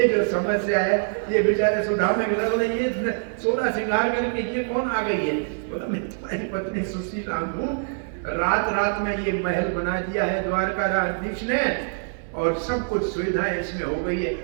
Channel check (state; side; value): silent; left; digital silence